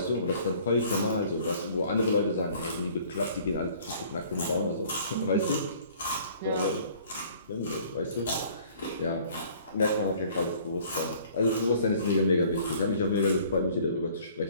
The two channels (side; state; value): both; inverted; correlation -0.54